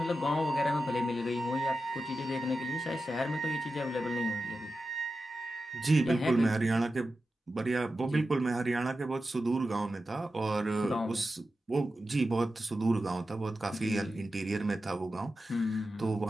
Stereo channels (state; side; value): normal; both; correlation 0.92